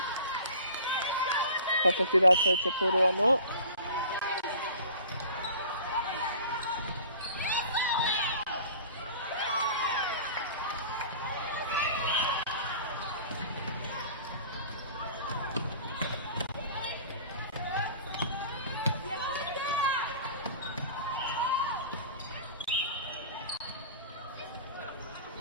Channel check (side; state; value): both; inverted; correlation -0.43